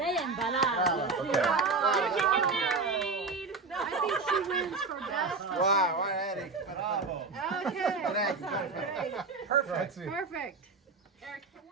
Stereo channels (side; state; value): left; quieter; 4.1 dB